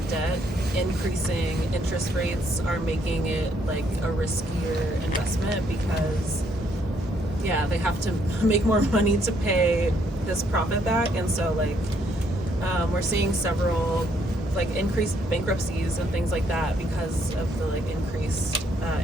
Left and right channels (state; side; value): normal; both; correlation 0.70